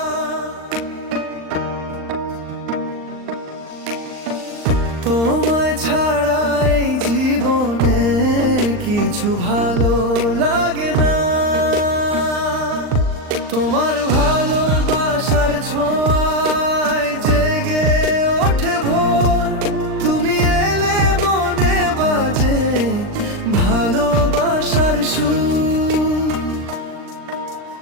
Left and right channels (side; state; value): left; late; 39 ms